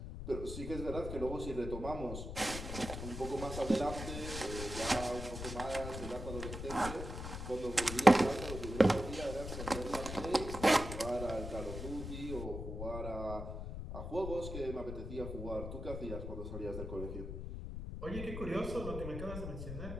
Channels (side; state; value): left; noise; rumble, 7 dB below the sound